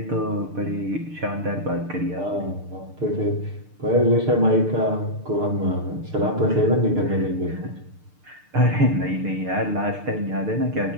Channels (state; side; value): late; left; 6.7 ms